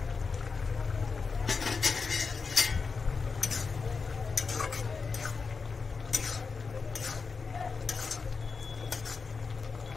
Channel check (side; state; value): right; quieter; 4.9 dB